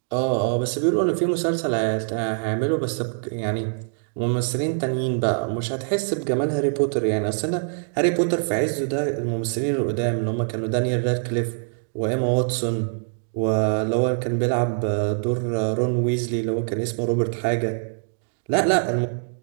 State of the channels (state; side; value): silent; left; digital silence